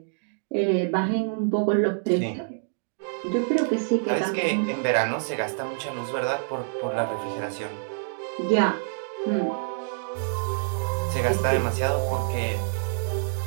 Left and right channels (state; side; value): silent; left; digital silence